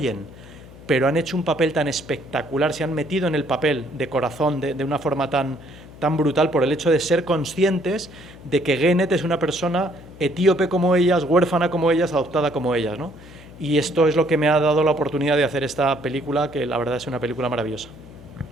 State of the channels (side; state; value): left; noise; hum, 19 dB below the sound